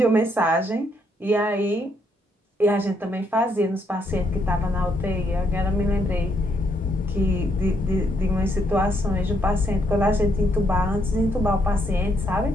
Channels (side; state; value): both; normal; correlation 0.74